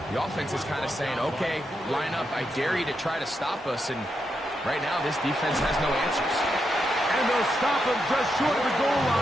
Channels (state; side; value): normal; both; correlation 0.84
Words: the offense is kind of saying, okay, line up. I dare you to try to stop us. And right now, this defense has no answers. And they'll stop him just short of the goal